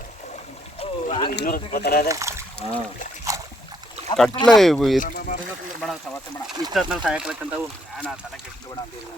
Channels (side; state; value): both; normal; correlation 0.70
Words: ಕಟ್ಲೆ ಇಷ್ಟೊತ್ತಿನಲ್ಲಿ ಸಾಯಕಂತವು